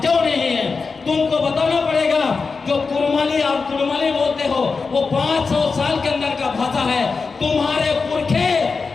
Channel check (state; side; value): quieter; right; 4.6 dB